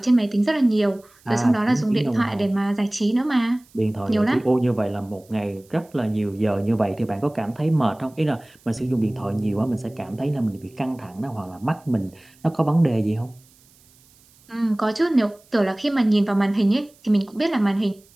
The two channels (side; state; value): right; noise; hiss, 30 dB below the sound